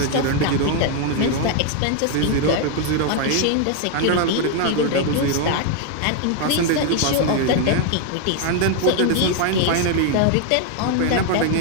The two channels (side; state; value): both; different; correlation 0.01